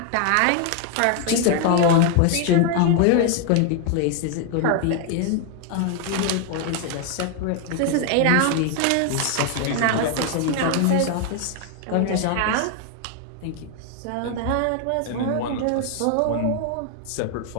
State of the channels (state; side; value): different; both; correlation 0.00